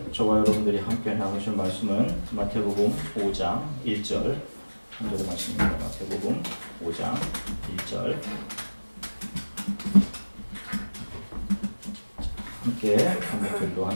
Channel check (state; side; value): inverted; both; correlation -1.00